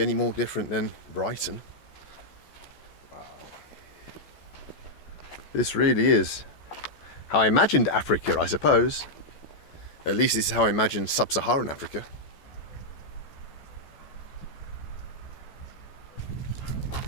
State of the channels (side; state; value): right; late; 14 ms